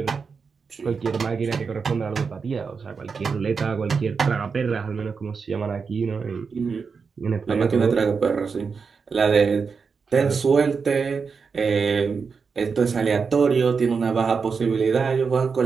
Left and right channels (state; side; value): quieter; left; 5.4 dB